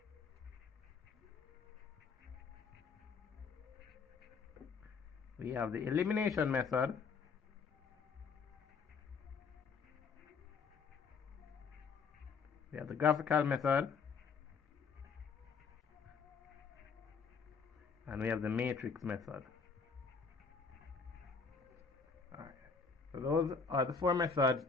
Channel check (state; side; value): quieter; right; 5.2 dB